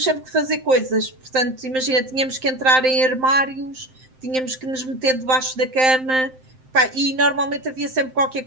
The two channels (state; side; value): late; left; 7.7 ms